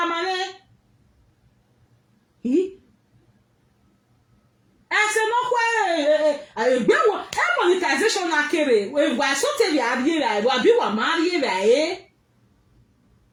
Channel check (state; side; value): identical; both; correlation 1.00